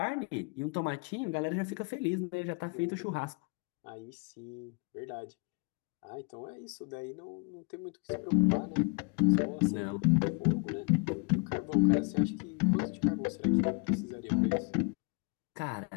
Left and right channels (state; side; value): quieter; right; 33.4 dB